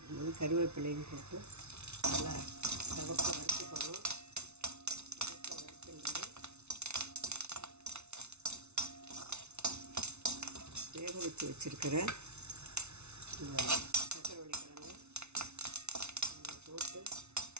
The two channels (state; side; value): late; left; 0.81 ms